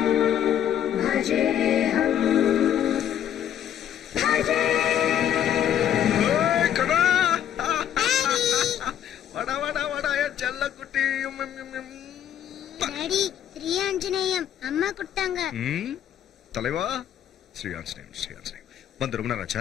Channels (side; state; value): right; quieter; 10.2 dB